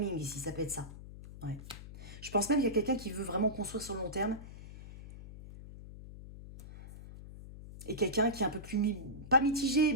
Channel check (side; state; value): left; noise; hum, 14 dB below the sound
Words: ici, ça peut être ça. Ouais. Je pense même qu'il y a quelqu'un qui veut vraiment construire sur le long terme. Et quelqu'un qui est un peu plus, pas mitigé,